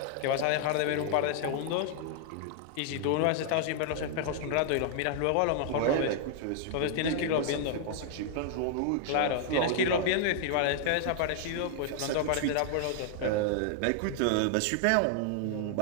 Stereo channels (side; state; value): both; different; correlation -0.01